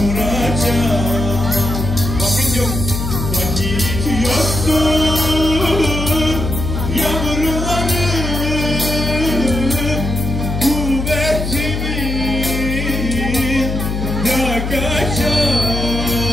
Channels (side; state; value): left; noise; hum, 3 dB below the sound